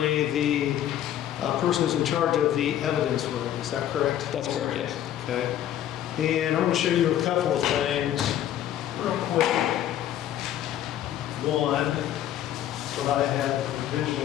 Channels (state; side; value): quieter; right; 11.5 dB